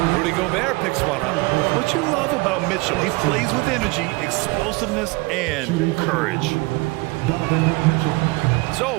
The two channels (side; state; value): left; quieter; 24.9 dB